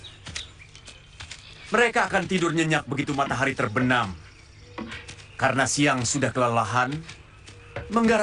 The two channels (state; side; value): identical; both; correlation 1.00